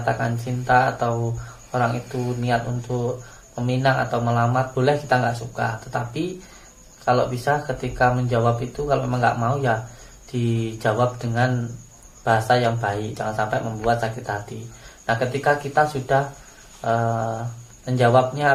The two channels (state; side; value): identical; both; correlation 1.00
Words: cinta atau orang itu niat untuk meminang atau melamar, boleh kita nggak suka, tetapi kalau bisa ketika menjawab itu, kalau memang nggak mau ya dijawab dengan bahasa yang baik, jangan sampai membuat sakit hati. Nah, ketika kita sudah menjawabnya